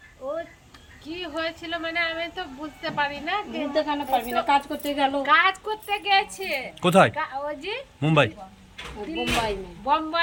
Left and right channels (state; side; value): identical; both; correlation 1.00